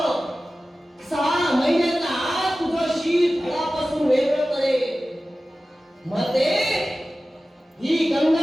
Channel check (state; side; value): normal; both; correlation 0.96